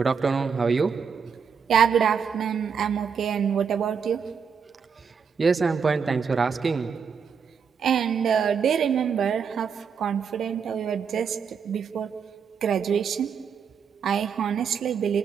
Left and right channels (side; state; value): left; quieter; 6.5 dB